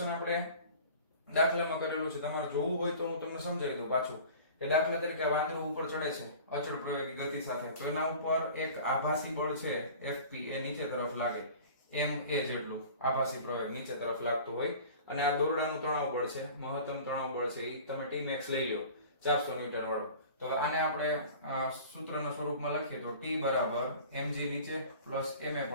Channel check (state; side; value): inverted; both; correlation -0.42